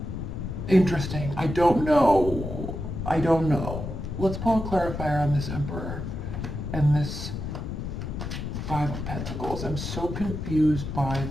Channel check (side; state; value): left; noise; rumble, 5 dB below the sound